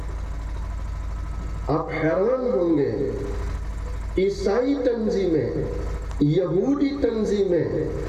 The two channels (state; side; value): identical; both; correlation 1.00